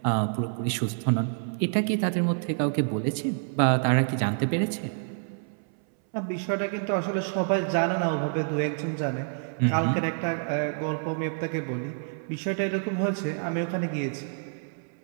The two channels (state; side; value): silent; left; 59 dB below the other